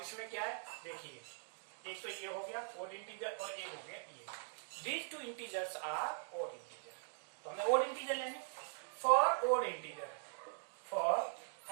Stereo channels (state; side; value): silent; left; digital silence